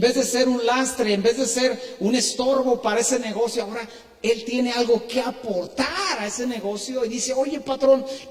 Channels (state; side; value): identical; both; correlation 1.00